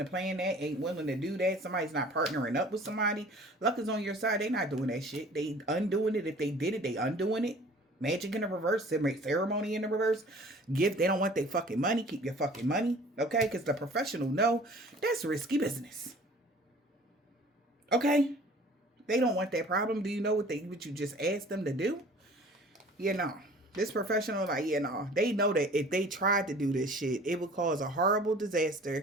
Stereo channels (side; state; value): both; normal; correlation 0.48